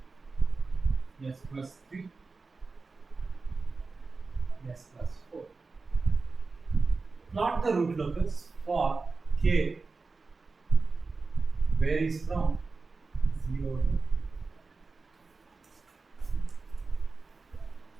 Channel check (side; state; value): left; quieter; 4.1 dB